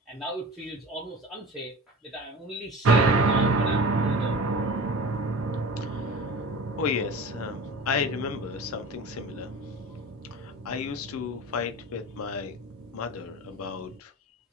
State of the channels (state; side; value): normal; both; correlation 0.34